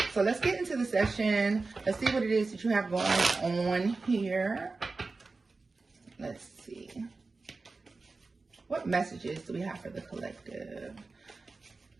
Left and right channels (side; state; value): left; quieter; 3.8 dB